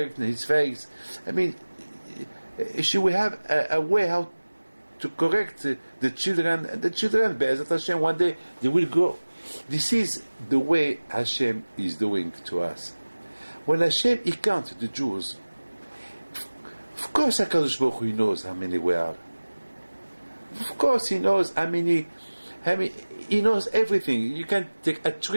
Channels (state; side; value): inverted; both; correlation -1.00